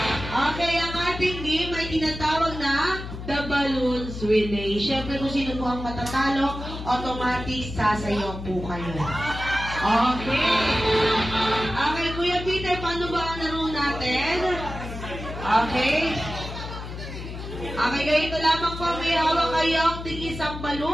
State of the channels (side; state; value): left; noise; hum, 9 dB below the sound